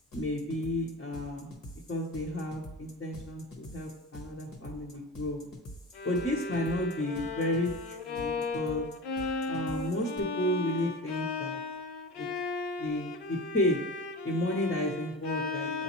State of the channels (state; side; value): normal; both; correlation 0.31